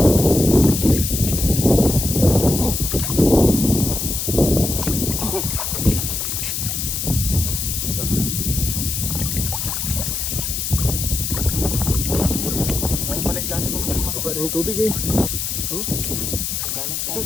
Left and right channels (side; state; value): left; noise; hiss, 2 dB below the sound